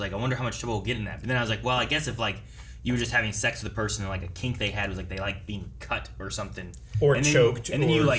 I wonder how much trouble we'll get in that. But then I was like, well, I guess if like you were just having sex with a person and like a kink they had was like they like being cut or something, Or and then, choked and then you or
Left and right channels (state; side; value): identical; both; correlation 1.00